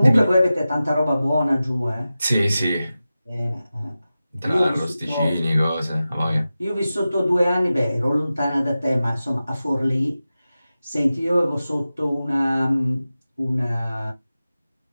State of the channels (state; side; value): inverted; both; correlation -0.94